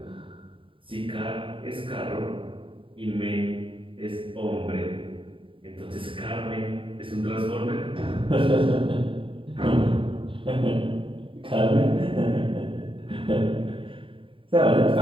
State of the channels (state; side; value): late; left; 0.25 ms